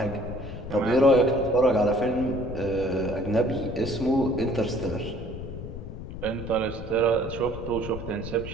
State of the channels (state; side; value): noise; left; rumble, 9 dB below the sound